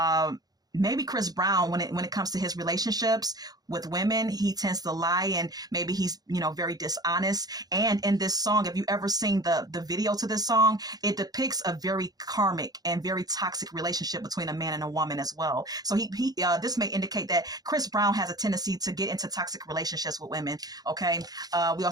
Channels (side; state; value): left; late; 0.19 ms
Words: maybe Chris Brown, when it comes to his relationships with women, he tends to lie, and maybe he's, very dishonest. And in this song, if you ever seen the video to this song, it depicts a very karmic and very toxic relationship between a man and a woman as well. So this may indicate that Chris Brown has a tendency to get into toxic relationships with women. Okay. We